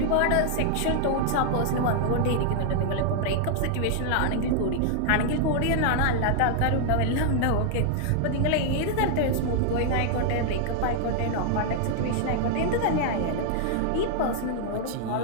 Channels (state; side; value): different; both; correlation -0.01